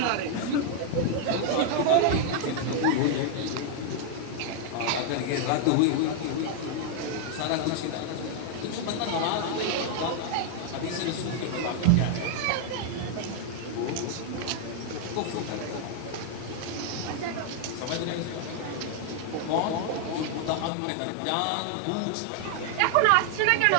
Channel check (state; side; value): different; both; correlation 0.00